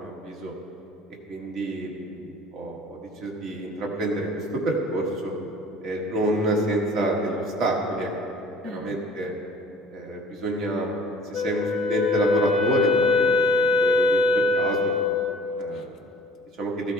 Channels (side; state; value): both; normal; correlation 0.49